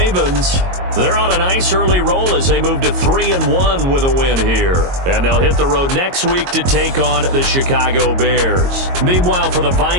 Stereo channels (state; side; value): late; left; 22 ms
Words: they're on a nice early roll as they move to 3-1 with a win here. And they'll hit the road next week to take on the Chicago Bears. Meanwhile, for the